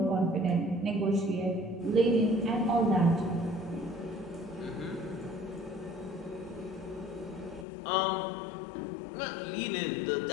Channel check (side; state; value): right; drops out; at 7.7 s